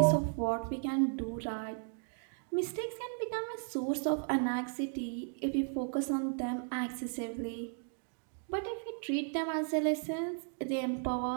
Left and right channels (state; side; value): silent; left; 54 dB below the other